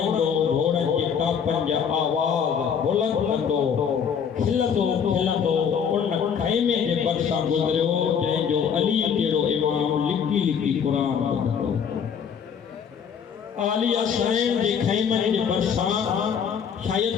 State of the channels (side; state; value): right; quieter; 7.3 dB